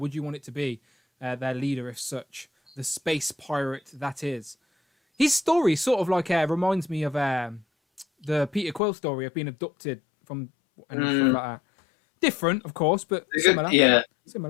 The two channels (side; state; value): right; drops out; at 8.8 s